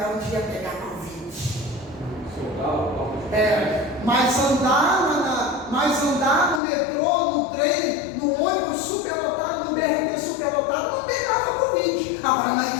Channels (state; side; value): drops out; right; at 6.6 s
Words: onde ia pegar Covid. Mas andar no metrô, no trem, no ônibus superlotado, no BRT superlotado, não pegava Covid. Agora na